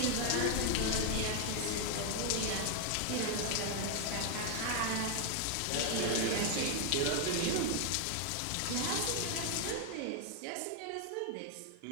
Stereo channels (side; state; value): both; different; correlation 0.00